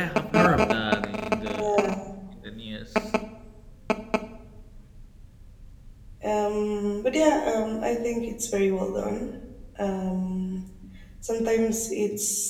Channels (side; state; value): both; identical; correlation 1.00